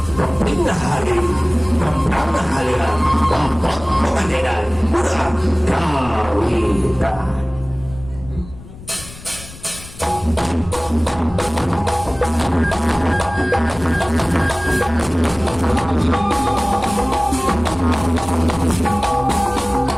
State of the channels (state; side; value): noise; left; rumble, 17 dB below the sound